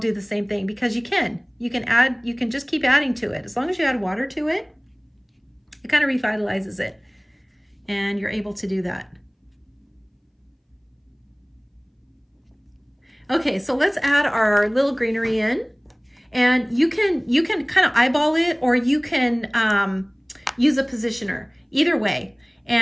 the same thing, because you can just keep adding to it. As long as you add water to it, it kind of revitalizes it. And you're able to do that. Okay, so let's add our little greenery in. And you can kind of eyeball it, or you can use a positioner, either way.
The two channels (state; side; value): identical; both; correlation 1.00